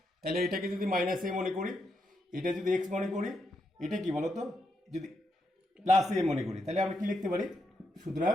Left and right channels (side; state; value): both; normal; correlation 0.81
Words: তাহলে এটাকে যদি -a মনে করি, এটা যদি x মনে করি, এটা কি বলো তো যদি +a মনে করি, তাহলে আমরা কি লিখতে পারি? সুতরাং